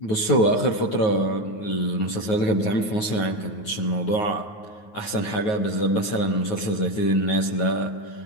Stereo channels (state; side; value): late; right; 9.4 ms